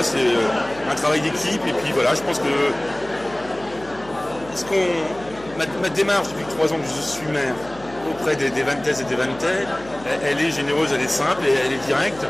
c'est un travail d'équipe, et puis voilà, je pense que ma démarche depuis 3 ans que je suis maire auprès des vannaises et des vannaitais, elle est généreuse, elle est simple et elle est directe.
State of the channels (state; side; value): noise; left; hum, 20 dB below the sound